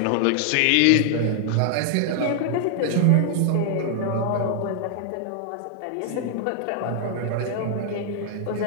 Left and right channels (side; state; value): both; different; correlation 0.00